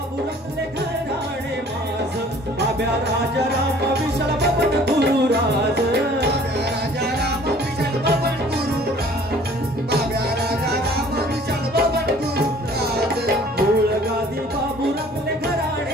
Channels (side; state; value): both; normal; correlation 0.52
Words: राजा राम विशाल बबन गुरुराज राजा राम विशाल बबन गुरुराज बाब्या राजा राम विशाल बबन गुरुराज मूळ गादी बाबू रमले